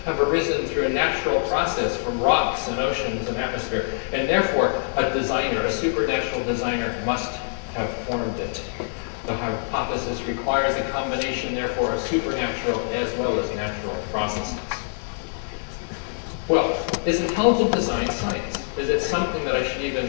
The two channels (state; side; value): silent; right; digital silence